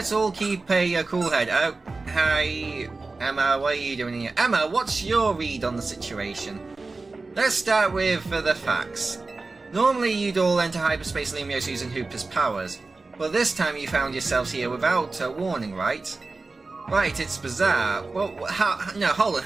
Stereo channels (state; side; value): quieter; left; 3.7 dB